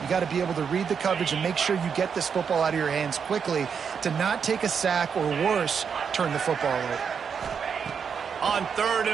You got to be able to read the coverage and make sure you get this football out of your hands quickly to not take a sack or worse, turn the football over. On 3rd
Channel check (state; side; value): quieter; left; 6.7 dB